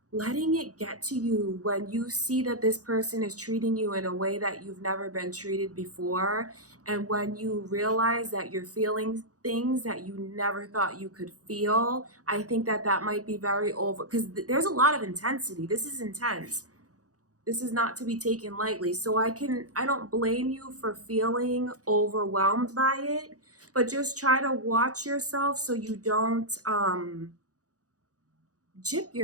letting it get to you when you see that this person is treating you in a way that you've never been treated before, and when you realize that you're feeling things that you never thought you could feel. I think that that might be very over, because there's a lot of intensity. This is intense. This is not to be taken lightly. So I don't blame you for feeling overwhelmed by it, but just try to watch yourself so you don't jip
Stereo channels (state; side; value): late; left; 0.67 ms